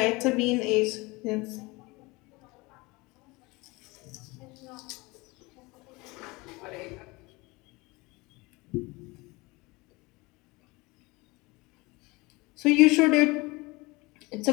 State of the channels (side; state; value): right; quieter; 24.0 dB